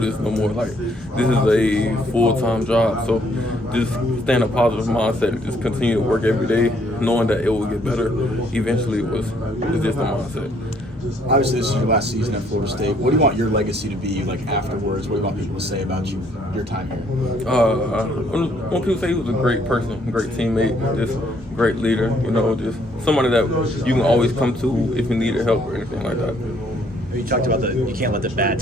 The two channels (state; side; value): normal; both; correlation 0.66